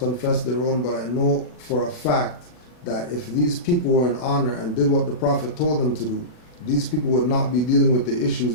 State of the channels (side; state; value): right; late; 40 ms